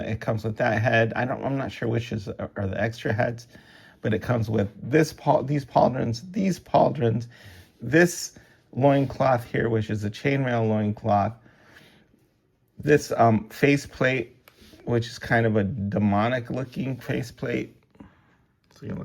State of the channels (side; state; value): both; identical; correlation 1.00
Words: with that head. I'm not sure which are the extra heads, but it comes with these pauldrons, this loincloth here, which is a chainmail loincloth, this faceplate, which is kind of a demonic looking faceplate. So you